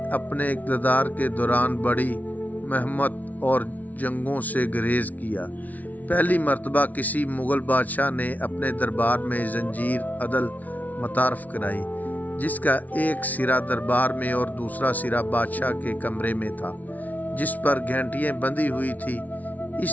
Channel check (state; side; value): late; right; 0.074 ms